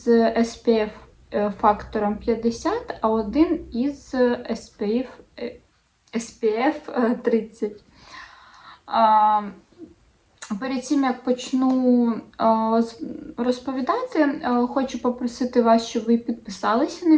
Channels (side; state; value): both; identical; correlation 1.00